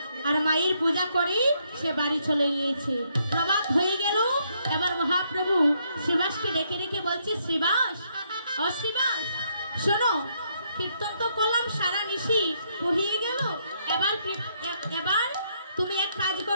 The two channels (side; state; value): both; inverted; correlation -0.74